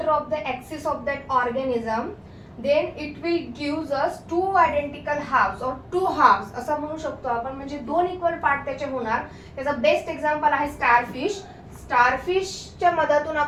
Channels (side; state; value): both; identical; correlation 1.00